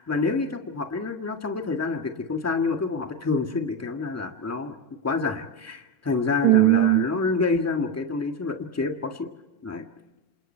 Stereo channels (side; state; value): both; normal; correlation 0.14